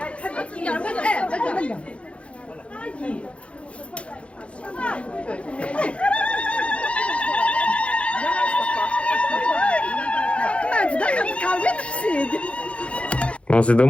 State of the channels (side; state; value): right; late; 0.061 ms